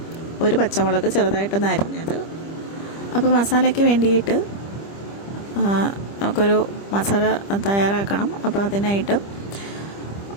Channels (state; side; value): late; right; 25 ms